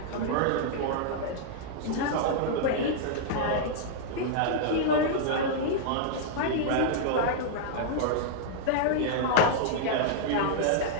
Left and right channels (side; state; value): both; different; correlation -0.01